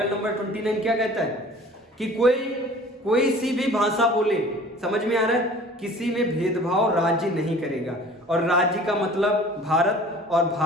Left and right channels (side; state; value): both; normal; correlation 0.46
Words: नंबर 29 क्या कहता है कि कोई सी भी भाषा बोले, समझ में आ रहा है, किसी में भेदभाव राज्य नहीं करेगा। और राज्य का मतलब भारत, और